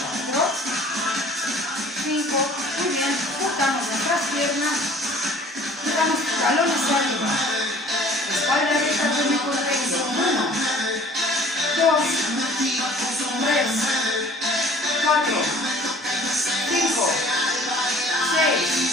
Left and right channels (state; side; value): normal; both; correlation 0.51